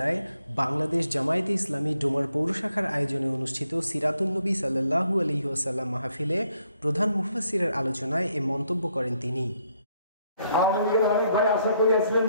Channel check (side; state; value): both; inverted; correlation -0.73